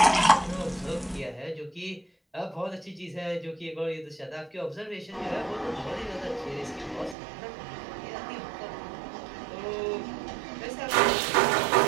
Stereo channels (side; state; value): left; drops out; at 7.2 s